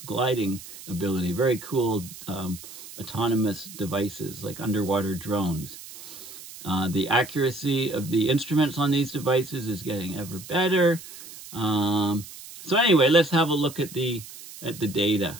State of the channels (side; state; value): right; noise; hiss, 15 dB below the sound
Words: gliding ability. Very cool autonomous devices like underwater drones. The accuracy of the instruments on these devices is getting ever better. So anyway, let's have a look at the data.